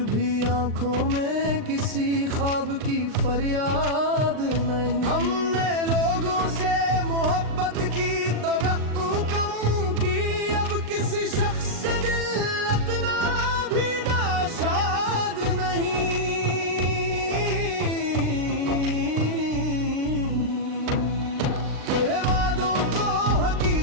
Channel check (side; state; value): left; late; 39 ms